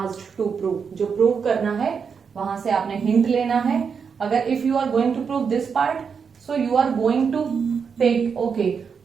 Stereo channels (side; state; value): left; quieter; 6.2 dB